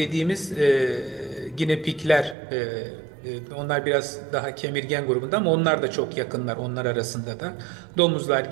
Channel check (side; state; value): left; drops out; at 2.4 s